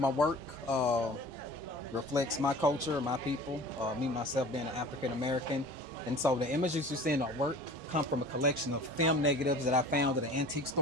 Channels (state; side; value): normal; both; correlation 0.42